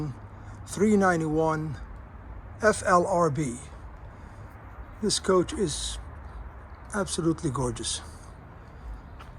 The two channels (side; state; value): both; identical; correlation 1.00